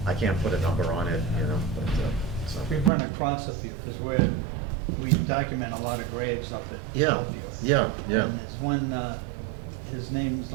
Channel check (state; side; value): drops out; left; at 2.9 s